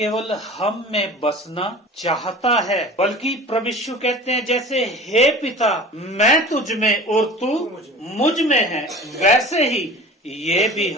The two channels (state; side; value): normal; both; correlation 0.39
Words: हम में बसना चाहता है, बल्कि प्रभु यीशु कहते हैं, जैसे हे पिता मैं तुझ में और तू मुझ में है, वैसे ही ये भी